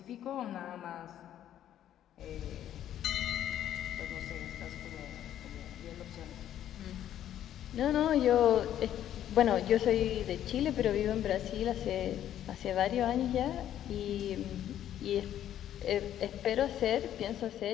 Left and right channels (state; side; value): quieter; right; 11.2 dB